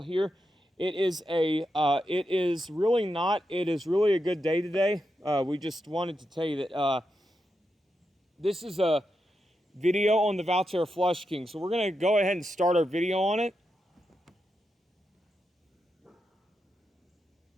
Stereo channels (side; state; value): both; normal; correlation 0.86